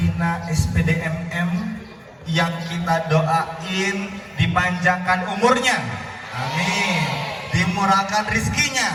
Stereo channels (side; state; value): both; identical; correlation 1.00